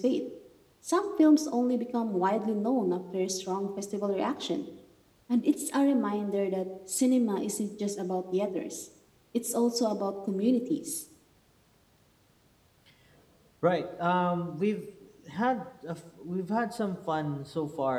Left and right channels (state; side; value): identical; both; correlation 1.00